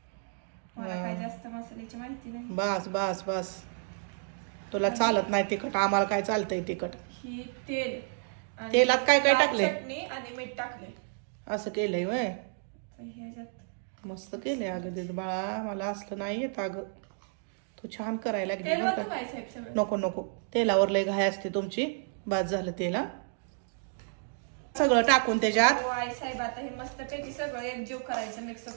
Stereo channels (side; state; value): left; silent; digital silence